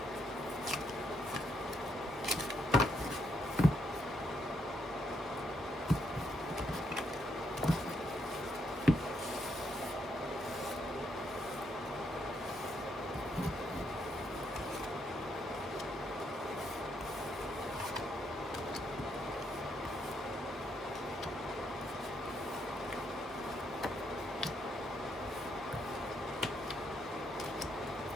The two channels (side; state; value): both; normal; correlation 0.77